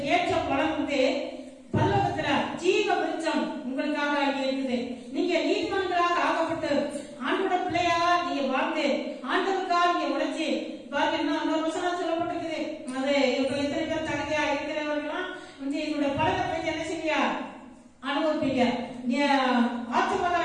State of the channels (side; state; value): both; identical; correlation 1.00